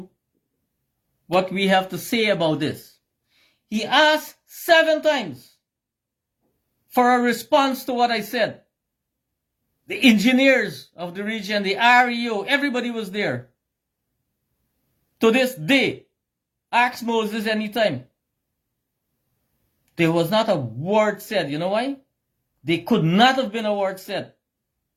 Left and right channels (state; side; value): identical; both; correlation 1.00